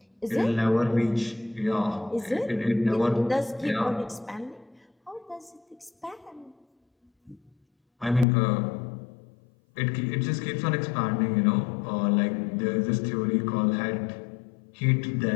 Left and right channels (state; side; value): drops out; right; at 8.2 s